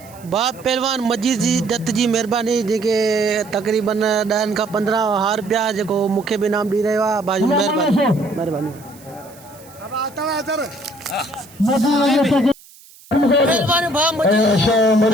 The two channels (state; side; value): noise; right; hiss, 24 dB below the sound